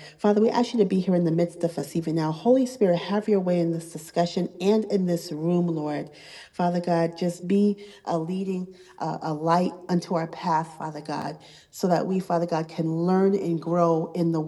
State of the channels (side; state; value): both; identical; correlation 1.00